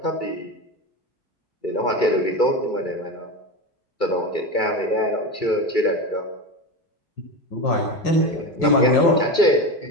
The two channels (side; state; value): right; late; 2.3 ms